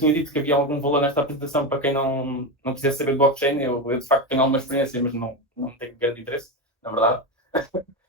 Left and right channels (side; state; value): both; normal; correlation 0.15